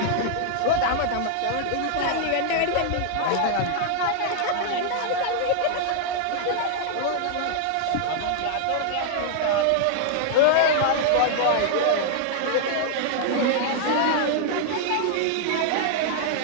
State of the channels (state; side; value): different; both; correlation 0.00